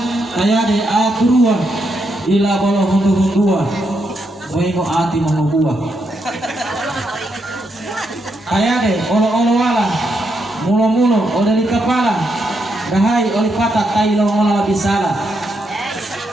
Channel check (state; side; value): normal; both; correlation 0.80